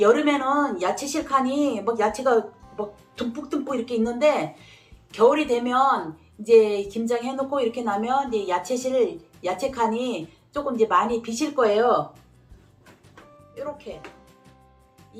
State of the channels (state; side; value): identical; both; correlation 1.00